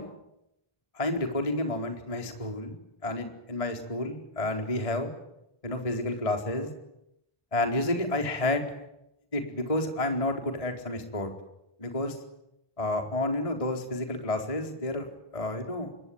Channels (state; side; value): late; right; 1.6 ms